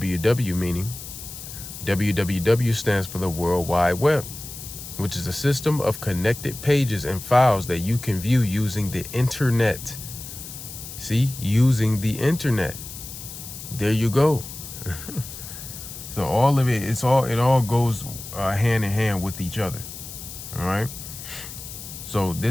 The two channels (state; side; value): noise; left; hiss, 12 dB below the sound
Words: meaning WWW stands for the World Wide Web, which is a system of connected pages and files that you can view using the internet. See, using the internet. There you go. So all of it, it all goes hand in hand with each other. All right. So